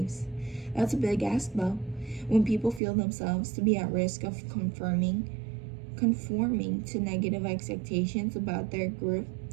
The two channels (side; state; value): left; drops out; at 2.8 s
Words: That's a big ask, though. When people feel themselves to be at risk of conforming to negative expectations about their group,